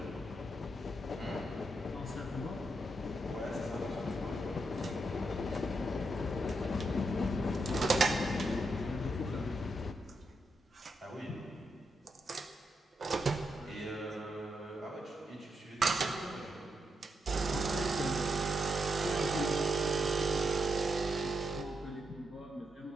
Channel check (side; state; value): both; normal; correlation 0.82